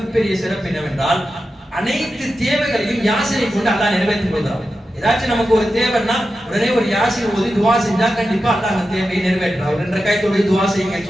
சிறப்பு என்னவென்றால் அனைத்து தேவைகளையும் யாசீனை கொண்டு அல்லாஹ் நிறைவேற்றிக் கொள்கிறான். ஏதாச்சும் நமக்கு ஒரு தேவைன்னா உடனே ஒரு யாசீன் ஓதி துஆ செஞ்சா கண்டிப்பா அல்லாஹ் அந்த தேவையை நிறைவேற்றுறான். ஒரு 2 ரக்காத் தொழுது துஆ செய்யுங்க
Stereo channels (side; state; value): both; normal; correlation 0.91